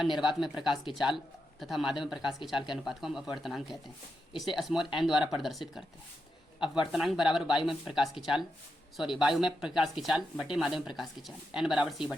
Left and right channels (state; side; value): normal; both; correlation 0.86